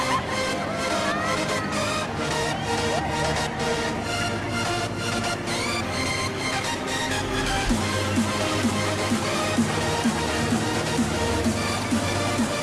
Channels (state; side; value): identical; both; correlation 1.00